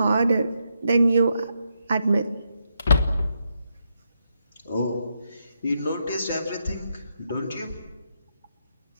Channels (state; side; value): inverted; both; correlation -0.81